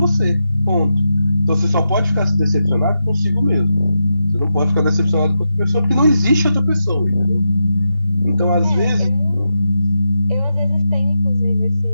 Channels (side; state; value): both; inverted; correlation -0.87